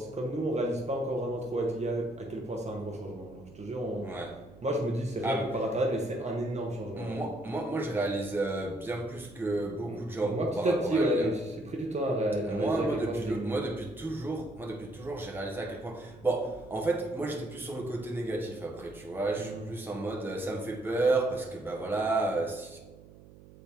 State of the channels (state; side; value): noise; right; hum, 20 dB below the sound